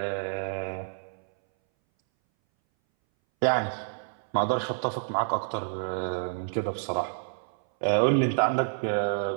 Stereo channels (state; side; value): silent; left; 59 dB below the other